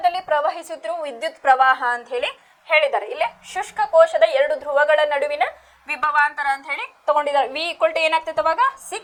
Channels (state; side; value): identical; both; correlation 1.00